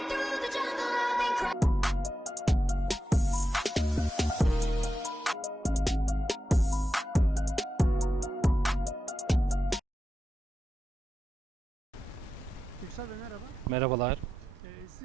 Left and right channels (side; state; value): both; normal; correlation 0.89